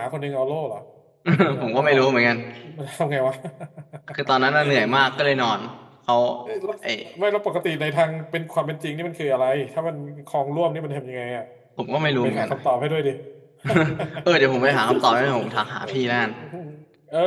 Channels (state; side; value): identical; both; correlation 1.00